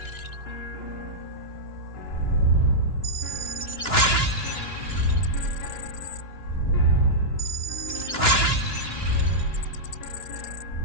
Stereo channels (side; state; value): right; late; 2.9 ms